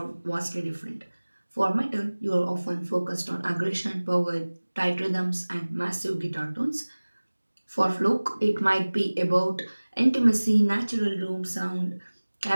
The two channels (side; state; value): both; inverted; correlation -1.00